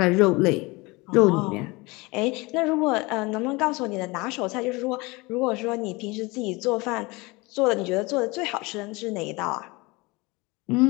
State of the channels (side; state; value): right; quieter; 24.3 dB